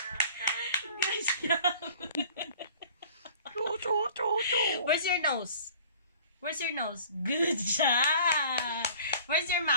Good job. Where's your nose? Where's your nose? Good job. Where's your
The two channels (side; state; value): both; inverted; correlation -0.48